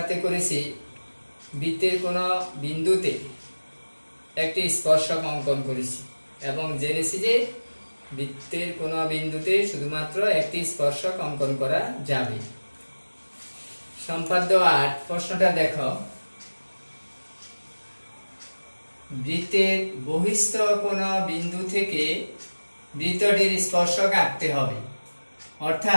করেছি বৃত্তের কোনো বিন্দুতে একটি স্পর্শক অঙ্কন করেছি এবং জেনেছি যে বৃত্তের কোনো বিন্দুতে শুধুমাত্র একটি স্পর্শক অঙ্কন করা যাবে। সম্পাদ্য 8 প্রশ্নটা দেখো। বৃত্তের বহিস্থ কোনো বিন্দু থেকে বৃত্তটির স্পর্শক আঁকতে হবে,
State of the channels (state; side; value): inverted; both; correlation -1.00